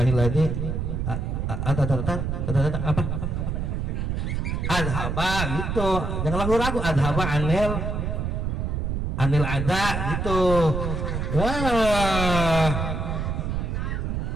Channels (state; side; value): noise; right; rumble, 1 dB below the sound